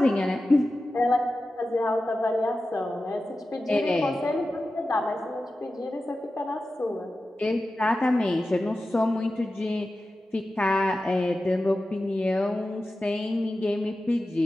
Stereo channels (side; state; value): both; normal; correlation 0.94